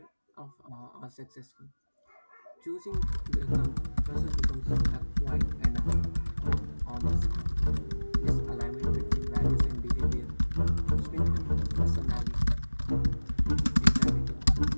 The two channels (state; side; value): inverted; both; correlation -1.00